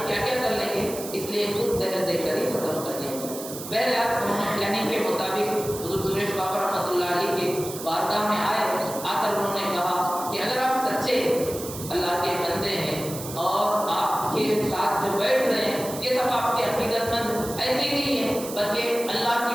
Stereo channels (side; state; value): right; noise; hiss, 11 dB below the sound